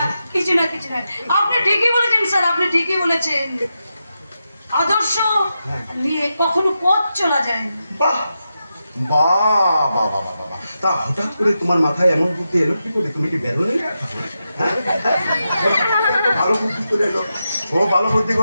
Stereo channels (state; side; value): inverted; both; correlation -0.88